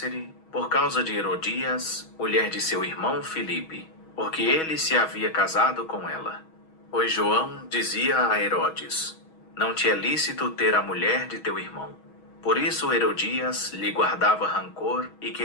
por causa de Herodias, mulher de seu irmão Filipe, porque ele se havia casado com ela. Pois João dizia a Herodes: não te é lícito ter a mulher de teu irmão. Por isso Herodias lhe guardava rancor e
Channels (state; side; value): late; right; 6.3 ms